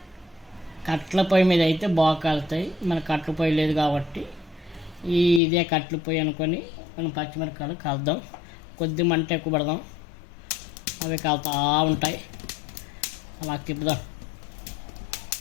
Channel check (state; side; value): drops out; right; at 5.4 s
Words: కట్ల పొయ్యి మీద అయితే బాగా కాలుతాయి. మన కట్ల పొయ్యి లేదు కాబట్టి ఇదే కట్ల పొయ్యి అనుకొని మనం పచ్చిమిరపకాయలు కాల్దాం. కొద్ది మంట ఎక్కువ పడదాం, అవి కాలుతూ ఉంటాయి. అలా తిప్పుదాం.